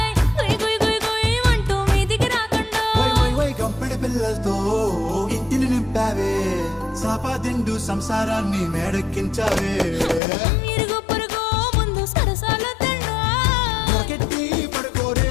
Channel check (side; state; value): right; drops out; at 10.2 s